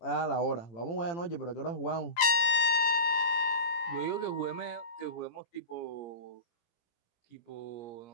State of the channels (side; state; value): right; late; 18 ms